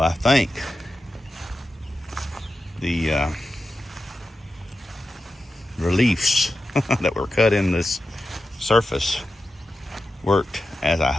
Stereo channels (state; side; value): normal; both; correlation 0.91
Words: think the reliefs that were cut in this surface worked as I